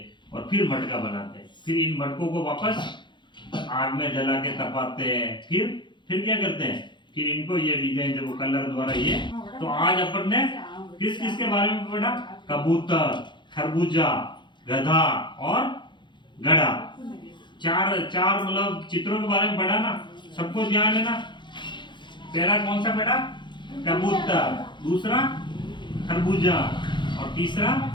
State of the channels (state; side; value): late; right; 0.23 ms